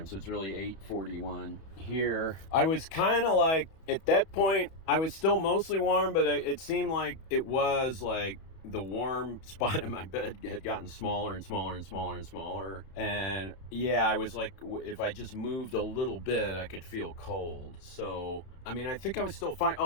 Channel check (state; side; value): late; right; 31 ms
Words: so it's really 8:41 here. I was kind of like, at that point, I was still mostly warm, but it seemed like it was like the warm spot in my bed had gotten smaller and smaller and smaller and smaller. And yeah, I was like, if I just moved a little bit, I could feel cold. So, I mean, I think I was still fine.